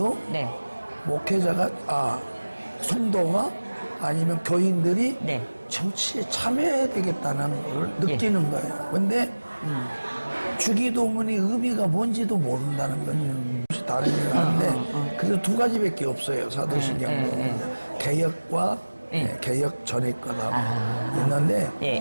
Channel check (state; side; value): inverted; both; correlation -1.00